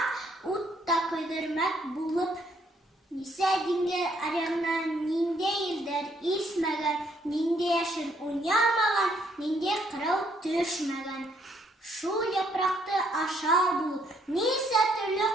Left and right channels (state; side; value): normal; both; correlation 0.69